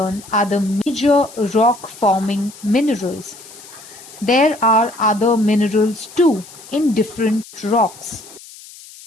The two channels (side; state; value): left; noise; hiss, 19 dB below the sound